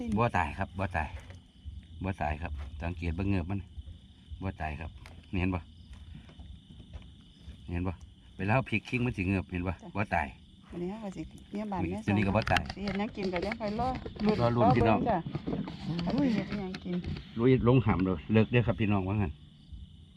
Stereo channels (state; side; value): identical; both; correlation 1.00